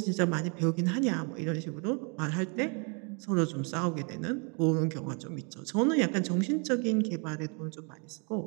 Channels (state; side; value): quieter; left; 35.6 dB